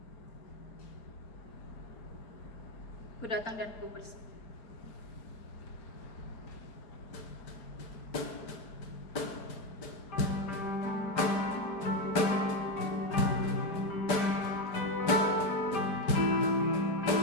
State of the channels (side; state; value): right; late; 5.0 ms